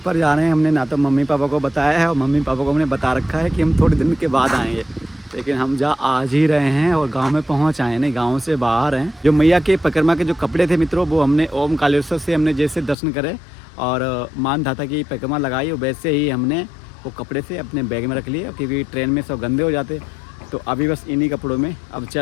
जा रहे हैं। हमने ना तो मम्मी पापा को बताया है और मम्मी पापा को हमने बता रखा है कि हम थोड़े दिन के बाद आएंगे, लेकिन हम आज ही रहे हैं और गांव में पहुंच आए, नहीं गांव से बाहर हैं। जो मैया के परिक्रमा के जो कपड़े थे मित्रों, वो हमने ओम कालेश्वर से हमने जैसे दर्शन करे और मान धाता की परिक्रमा लगाई, वैसे ही हमने वो कपड़े से अपने बैग में रख लिए, क्योंकि ट्रेन में सब गंदे हो जाते। तो अभी बस इन्हीं कपड़ों में अब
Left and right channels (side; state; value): right; drops out; at 13.0 s